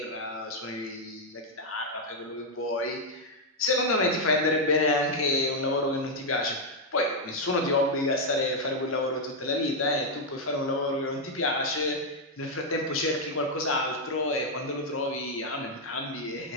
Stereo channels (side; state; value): both; normal; correlation 0.00